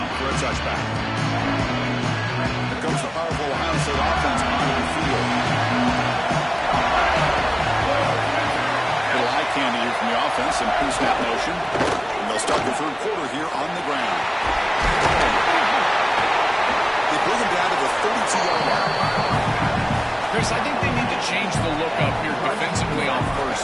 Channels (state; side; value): identical; both; correlation 1.00